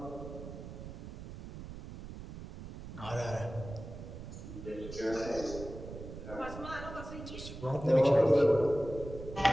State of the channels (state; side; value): noise; right; rumble, 11 dB below the sound